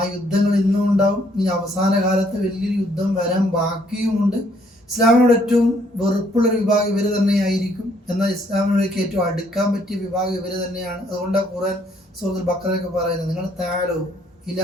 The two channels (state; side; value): normal; both; correlation 0.67